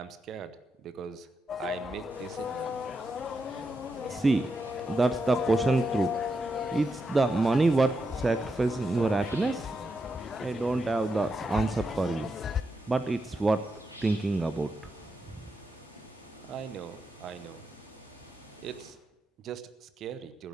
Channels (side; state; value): both; normal; correlation 0.85